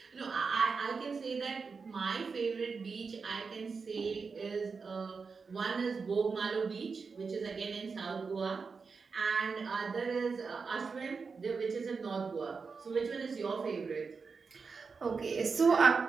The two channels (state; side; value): quieter; left; 5.0 dB